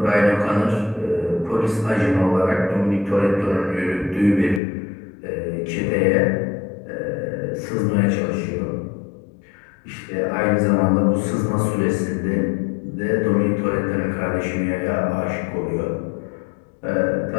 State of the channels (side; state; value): right; drops out; at 4.6 s